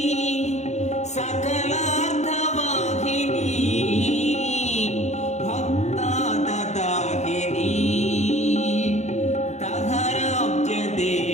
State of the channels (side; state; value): right; late; 0.33 ms